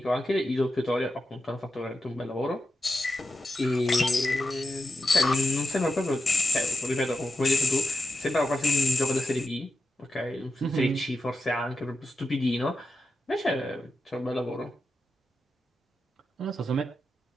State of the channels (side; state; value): both; normal; correlation 0.89